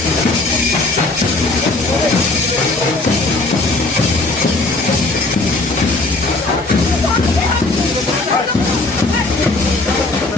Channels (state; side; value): quieter; right; 3.1 dB